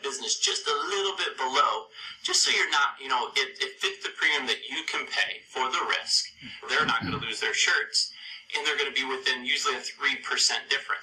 business just a little bit below, just so you're not, it fits the premium that you can pay for the risk. They're not going to lose their shirts, and they're going to be within usually a 3%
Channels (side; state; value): both; identical; correlation 1.00